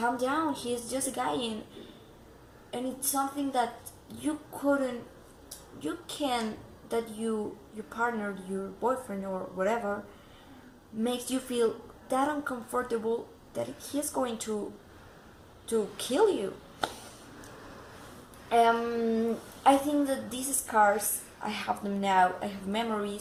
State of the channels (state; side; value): identical; both; correlation 1.00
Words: down. He's just a guy, and it's something that your partner, your boyfriend or whatever, makes you feel that uncomfortable that he's going to kill you. I think that these scars, I have them now. I have